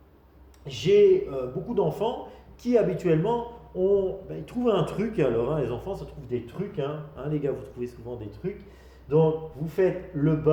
J'ai beaucoup d'enfants qui, habituellement, ils trouvent un truc. Alors, les enfants, ça trouve des trucs. Les gars, vous trouvez souvent des trucs. Donc, vous faites le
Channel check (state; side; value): identical; both; correlation 1.00